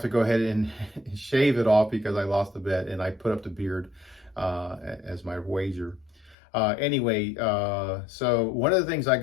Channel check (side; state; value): right; drops out; at 6.4 s